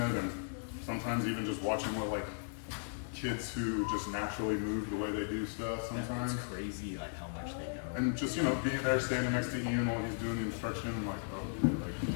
and sometimes even just watching what like kids who just naturally move the way they do stuff sometimes. It's crazy like how much they know. And just, you know, being there standing next to Ian while he's doing the instruction, like, oh, yeah,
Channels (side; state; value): right; silent; digital silence